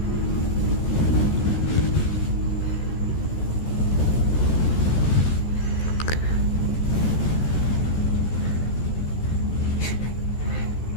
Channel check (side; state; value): right; late; 14 ms